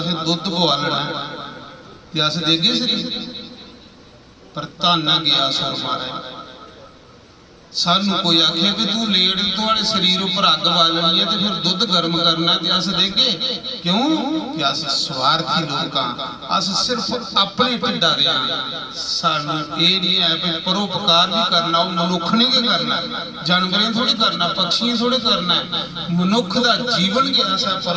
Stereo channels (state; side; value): identical; both; correlation 1.00